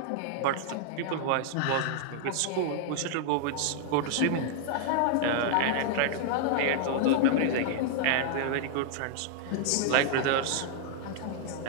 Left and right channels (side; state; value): both; different; correlation 0.00